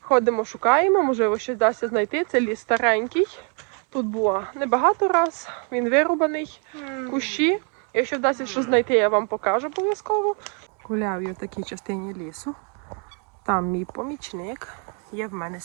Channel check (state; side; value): quieter; left; 39.8 dB